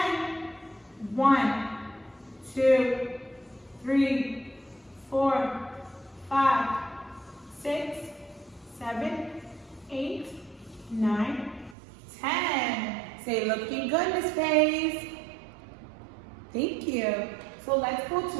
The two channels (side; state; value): left; drops out; at 11.8 s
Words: 1, 2, 3, 4, 5, 6, 7, 8, 9, 10. Say, looking good, Miss Faith. Thank you. So let's go